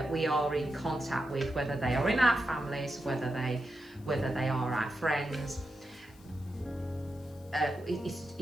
we are in contact with, whether they are in our families, whether they are our friends,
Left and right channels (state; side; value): noise; left; hiss, 27 dB below the sound